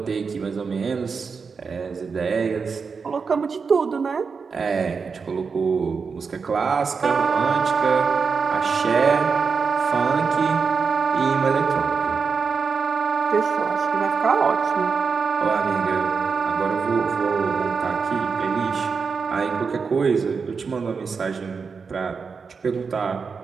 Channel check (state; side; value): quieter; left; 5.3 dB